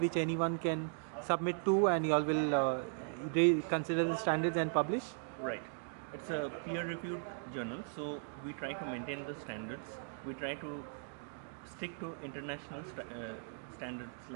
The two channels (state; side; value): silent; left; digital silence